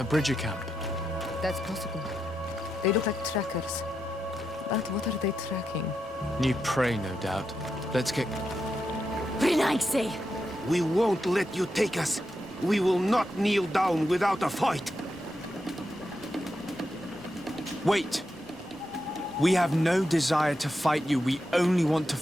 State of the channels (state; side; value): normal; both; correlation 0.86